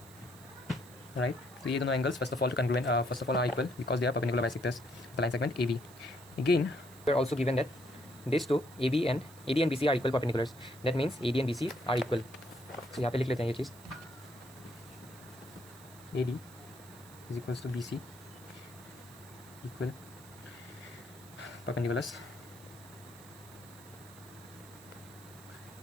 right. तो ये दोनों angles first of all are equal because they are perpendicular bisectors the line segment A B. Again we are also given that this two A D and B C are equal perpendiculars. That means A D and B C are equal. So यहाँ पे लिख लेते हैं ये चीज़. A D is equals to B C equal perpendiculars.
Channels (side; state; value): right; noise; hiss, 21 dB below the sound